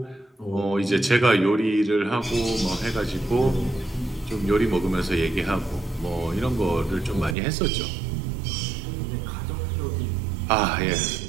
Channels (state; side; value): drops out; left; at 7.4 s